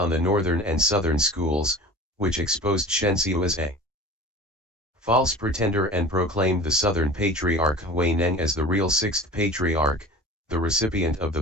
the northern and southern schools, which exposed Shen Hsiu as a false pretender and proclaimed the Southern Patriarch Hui Neng as the real Sixth Patriarch, the recipient of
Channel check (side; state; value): both; normal; correlation 0.38